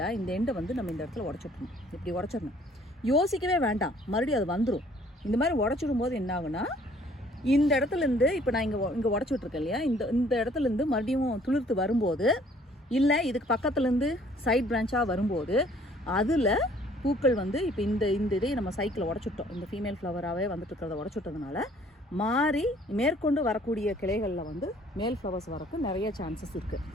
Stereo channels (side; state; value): both; normal; correlation 0.58